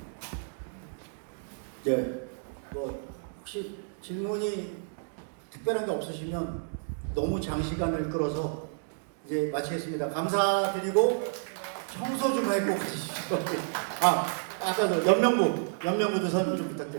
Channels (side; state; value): left; silent; digital silence